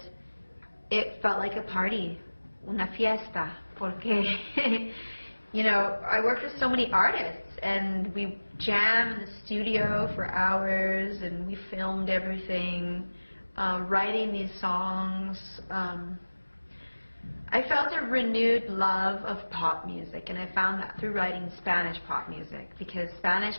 it felt like a party, una fiesta, porque, you know, I worked with so many artists, and we jam in the studio for hours, and we filmed everything, writing these songs. I felt a renewed love of pop music, and I found that through writing Spanish pop music, because Spanish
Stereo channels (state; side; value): inverted; both; correlation -1.00